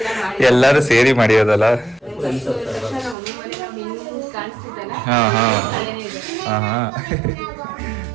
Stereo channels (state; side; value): drops out; left; at 3.2 s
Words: ಎಲ್ಲರೂ ಸೇರಿ ಮಾಡಿರೋದಲ್ಲ. ಹಾ ಹಾ ಹಾ ಹಾ.